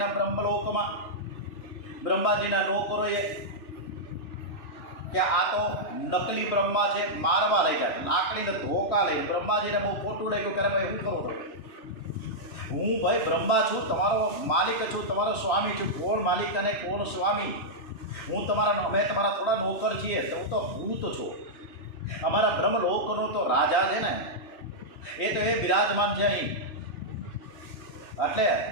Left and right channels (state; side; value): late; right; 2.9 ms